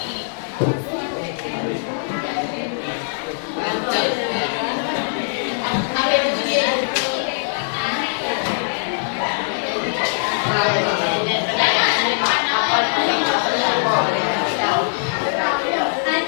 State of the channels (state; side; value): silent; right; 62 dB below the other